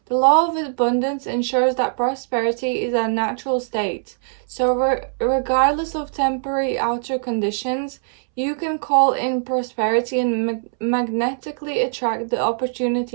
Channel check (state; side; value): silent; left; 65 dB below the other